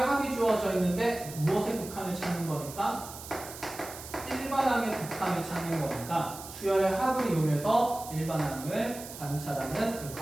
주어져 있는데 무엇의 극한을 찾는 거니까 일반항의 극한을 찾는 거니까 수열의 합을 이용해서 일반항을 관찰하는 그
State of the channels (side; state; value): right; noise; hiss, 13 dB below the sound